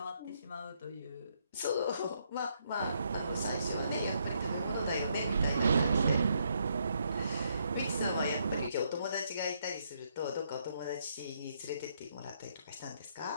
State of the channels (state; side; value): inverted; both; correlation -0.74